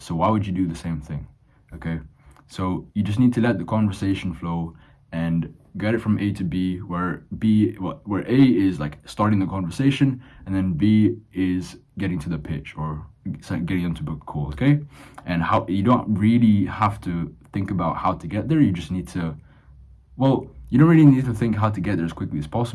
So why would you do the same thing? Okay. So you just need to let the conversation flow and get it from A to B, where A is like starting the conversation, and then B is getting to the pitch or getting them to book a call. Okay. And how you don't really have to think about how to get there. You just need to, you don't really need to think how to get there as quickly as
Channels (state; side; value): identical; both; correlation 1.00